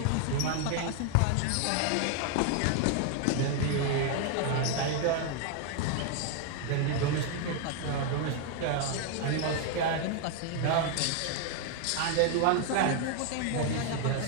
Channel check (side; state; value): both; different; correlation 0.00